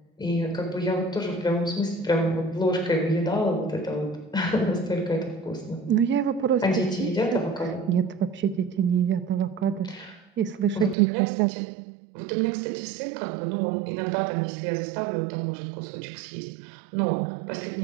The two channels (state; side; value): drops out; left; at 11.0 s